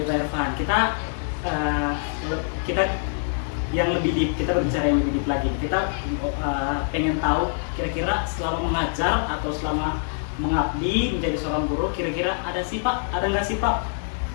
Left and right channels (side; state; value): right; silent; digital silence